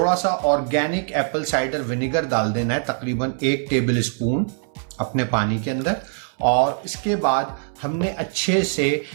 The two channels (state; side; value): silent; left; 63 dB below the other